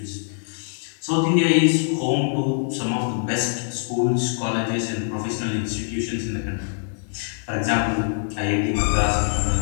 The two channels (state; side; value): silent; right; digital silence